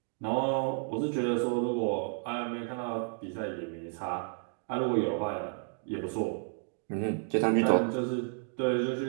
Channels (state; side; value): silent; left; 57 dB below the other